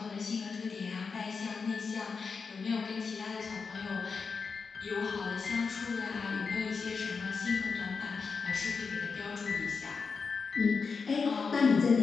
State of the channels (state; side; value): quieter; right; 5.1 dB